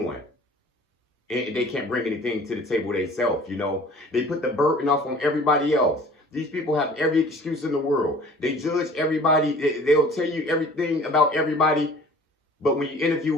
And they can't bring anything to the table themselves, They put the burden off on everybody else. These people have every excuse in the world. They judge everybody. They'll tell you everything about everybody. But when you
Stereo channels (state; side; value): normal; both; correlation 0.48